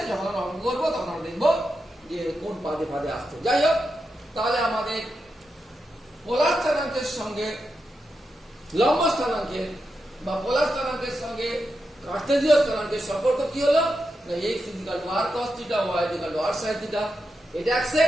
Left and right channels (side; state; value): both; normal; correlation 0.87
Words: যখন আমরা অঙ্ক করবো তখন আমরা দেখবো যে কোন পাদে পাদে আসছে। যাই হোক, তাহলে আমাদের পোলার স্থানাঙ্কের সঙ্গে লম্ব স্থানাঙ্কের বা পোলার স্থানাঙ্কের সঙ্গে কার্টেসীয় স্থানাঙ্কের সম্পর্ক কি হলো না x equal to r cos theta y equal to r sin theta এটা